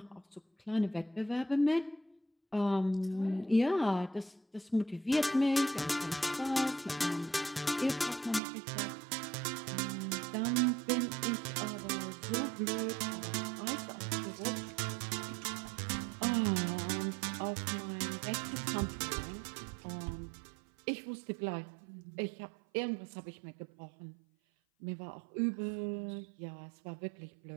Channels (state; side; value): drops out; left; at 8.4 s